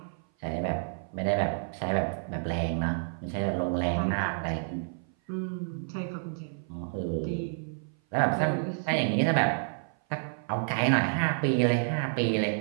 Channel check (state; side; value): silent; left; 56 dB below the other